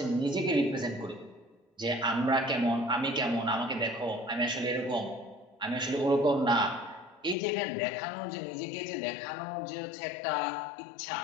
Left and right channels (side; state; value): right; drops out; at 7.4 s